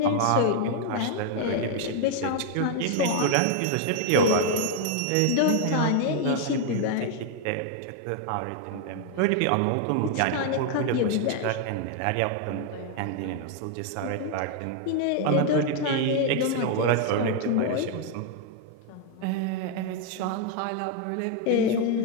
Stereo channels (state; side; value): different; both; correlation 0.00